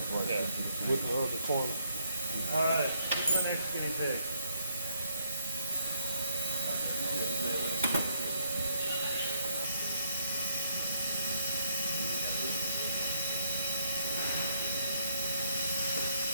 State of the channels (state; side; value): inverted; both; correlation -0.71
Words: part. Yeah. With the other corner. All right. Who's my next guinea pig?